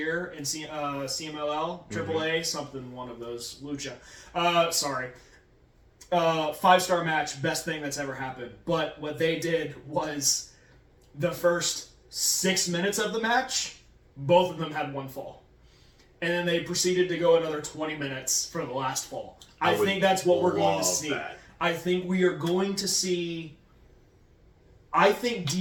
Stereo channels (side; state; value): both; identical; correlation 1.00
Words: in CMLL, AAA, something, one of those. Lucha. Sorry. 5-star match, best thing that's ever happened. But what they did was the first 6 minutes of the match, both of them had one fall. And then they proceeded to go another 20 minutes for the last fall. I think that's what we're going to see. I think we are going to see... I think